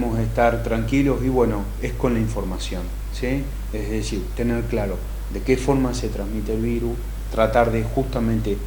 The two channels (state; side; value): identical; both; correlation 1.00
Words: estar tranquilos, y bueno, es con la información, ¿sí? Es decir, tener claro de qué forma se transmite el virus, tratar de justamente